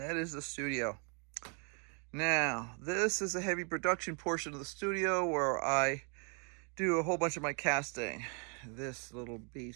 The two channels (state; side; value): quieter; left; 37.7 dB